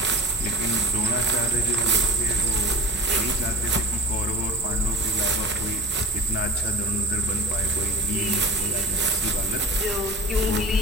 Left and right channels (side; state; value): both; normal; correlation 0.39